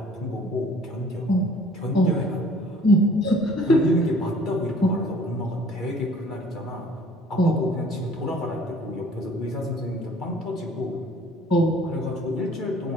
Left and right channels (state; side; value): normal; both; correlation 0.53